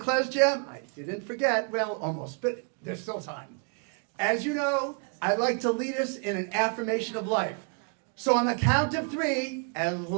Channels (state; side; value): quieter; left; 38.4 dB